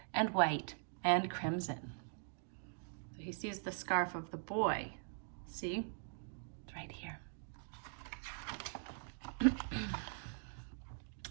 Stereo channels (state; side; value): silent; left; digital silence